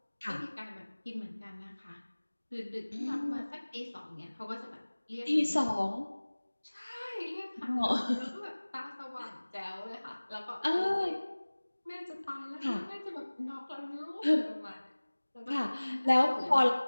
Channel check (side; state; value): both; inverted; correlation -1.00